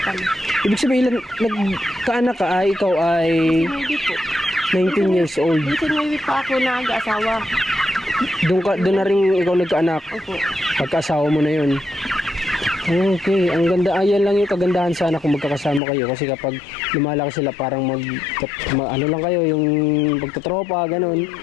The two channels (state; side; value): drops out; right; at 15.8 s